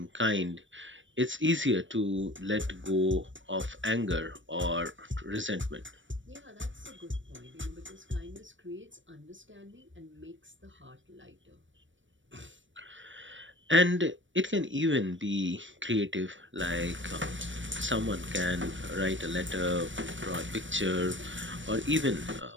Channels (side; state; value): left; late; 0.56 ms